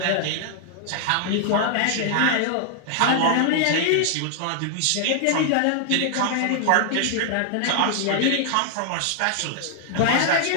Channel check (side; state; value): both; different; correlation 0.00